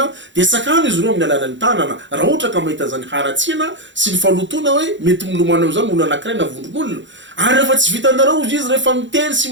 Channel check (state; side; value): late; left; 0.54 ms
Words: de sakano izy ireo amin'ny alalan'ny tanana raha ohatra ka mahita zany haratsiana sy ny falotona hoe mety milomana am'izany olona anankiray na vondron'olona ary rehefa tsy vitanareo izy rehefa miteny sy